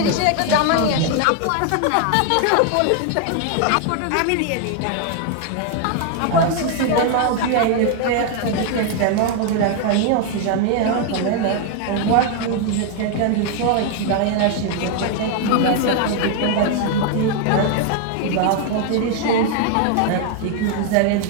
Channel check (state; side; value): different; both; correlation 0.00